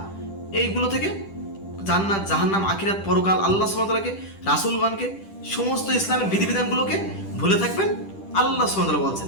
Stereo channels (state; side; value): late; right; 10 ms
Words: এইগুলো থেকে জান্নাত, জাহান্নাম, আখিরাত, পরকাল, আল্লাহ সুবহানাহু ওয়া তাআলাকে, রাসূলগণকে, সমস্ত ইসলামের বিধিবিধানগুলোকে ভুলে থাকবেন? আল্লাহ সুবহানাহু ওয়া তাআলা বলছেন